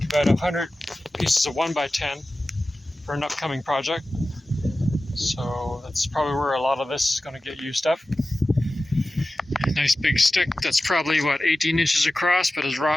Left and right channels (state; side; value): normal; both; correlation 0.95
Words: about 100 pieces of 1x10 for an upcoming project. So that's probably where a lot of this is gonna get used up. A nice big stick that's probably, what, 18 inches across, but is